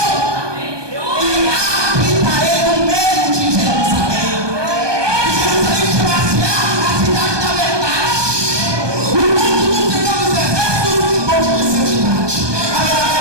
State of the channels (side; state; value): left; late; 1.2 ms